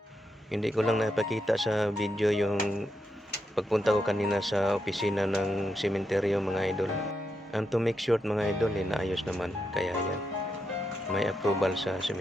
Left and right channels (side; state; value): both; normal; correlation 0.84